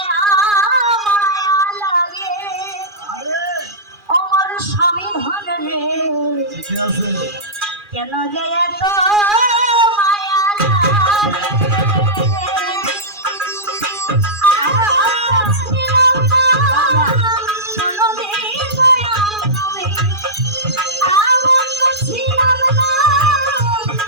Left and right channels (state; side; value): late; left; 2.4 ms